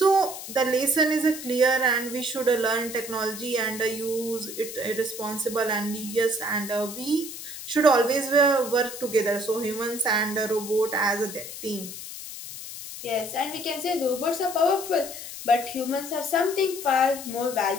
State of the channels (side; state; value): left; noise; hiss, 10 dB below the sound